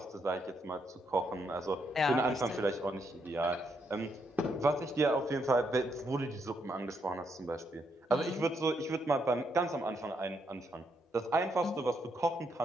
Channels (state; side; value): normal; both; correlation 0.77